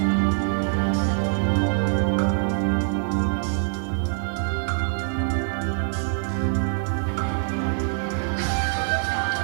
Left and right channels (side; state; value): left; silent; 62 dB below the other